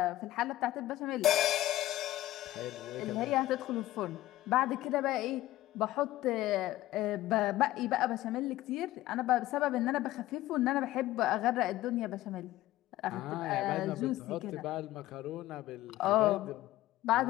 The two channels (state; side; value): quieter; right; 15.7 dB